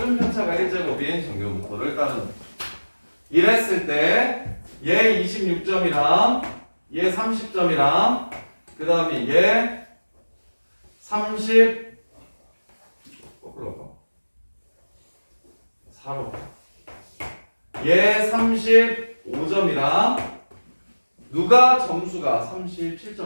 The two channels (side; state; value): both; inverted; correlation -1.00